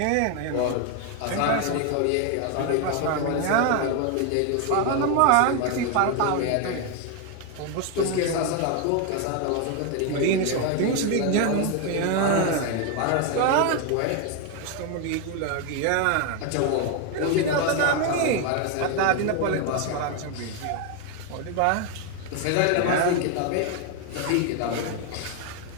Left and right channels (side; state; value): both; different; correlation 0.01